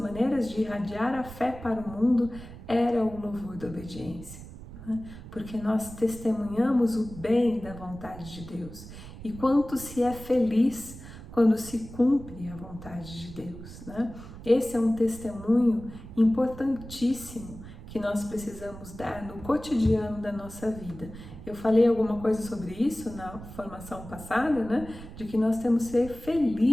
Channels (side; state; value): right; noise; rumble, 14 dB below the sound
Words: de irradiar a fé para o mundo era o louvor da obediência, né? Porque nós testemunhamos o bem da vontade de Deus e quanto se é feliz quando se cumpre a vontade de Deus, né? Esse é um testemunho importantíssimo que nós precisamos dar no cotidiano da nossa vida. Eu falei alguma coisa sobre isso na formação passada, né? De que nós temos que ser